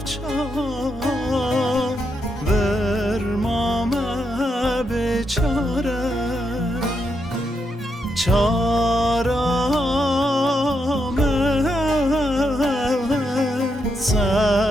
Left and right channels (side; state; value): both; normal; correlation 0.81